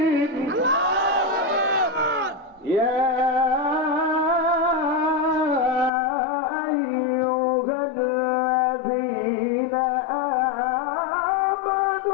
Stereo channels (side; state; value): right; drops out; at 5.9 s